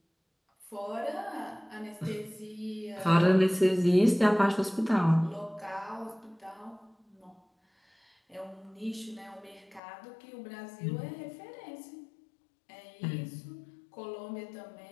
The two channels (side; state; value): right; drops out; at 9.8 s